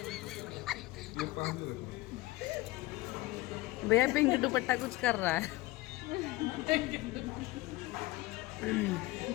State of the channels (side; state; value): right; quieter; 19.6 dB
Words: भैया पिंक दुपट्टा कुछ कर रहा है।